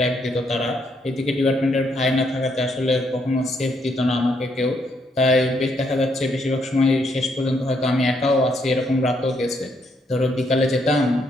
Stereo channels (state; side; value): normal; both; correlation 0.74